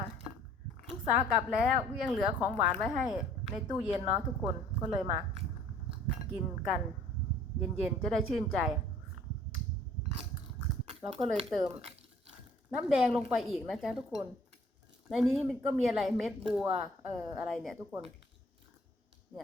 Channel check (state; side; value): normal; both; correlation 0.55